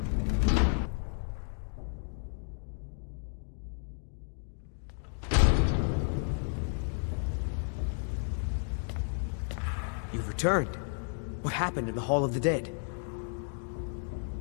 You've returned. What happened in the Hall of the Dead?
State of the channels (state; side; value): silent; right; 56 dB below the other